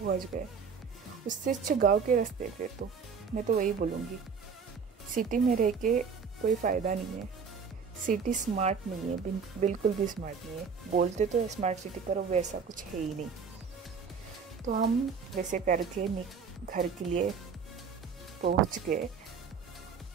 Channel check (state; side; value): quieter; left; 5.9 dB